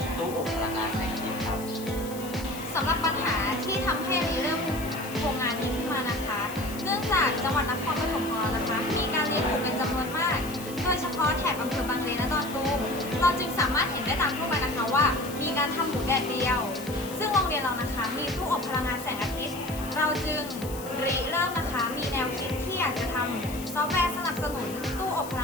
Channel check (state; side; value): noise; left; hiss, 14 dB below the sound